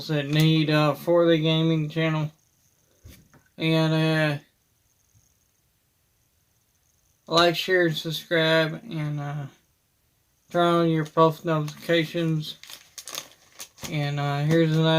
that need, for the gaming channel. And, like, share, and subscribe, and turn on your post notifications. And here's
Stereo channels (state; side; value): identical; both; correlation 1.00